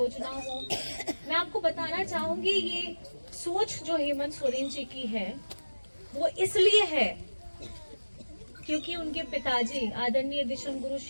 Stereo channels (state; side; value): inverted; both; correlation -1.00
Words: हो। मैं आपको बताना चाहूंगी ये सोच जो हेमंत सोरेन जी की है वो इसलिए है क्योंकि उनके पिताजी आदरणीय दिशम गुरु